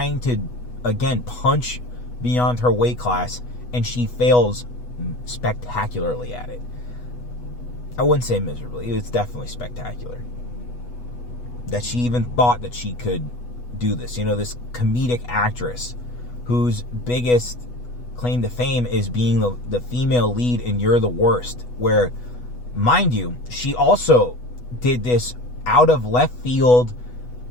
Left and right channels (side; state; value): right; late; 8.2 ms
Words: to, again, punch beyond her weight class, and she fails spectacularly at it. I wouldn't say miserably. It's definitely spectacular. That she even thought that she could do this. You know, this comedic actress whose biggest claim to fame is being the female lead in You're the Worst, where, mind you, she also did this out of left field